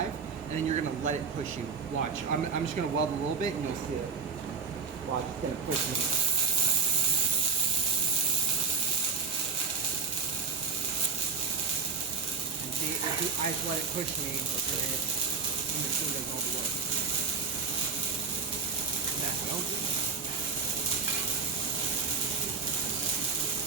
and then you're going to let it push you. Watch. I'm just going to weld a little bit, and you'll see it. Watch. It's going to push me. And see, if I just let it push me, the machine does all the work. And that's no good.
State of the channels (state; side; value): quieter; left; 5.2 dB